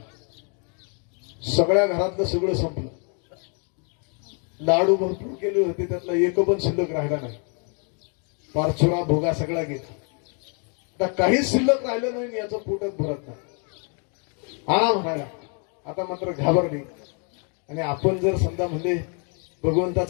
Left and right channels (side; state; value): right; quieter; 39.5 dB